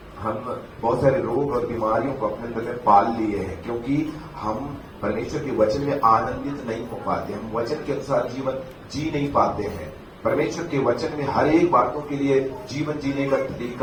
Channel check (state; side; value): identical; both; correlation 1.00